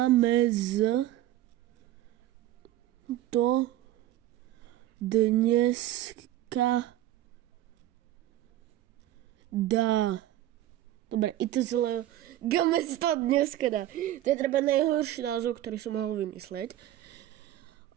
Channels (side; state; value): left; quieter; 13.8 dB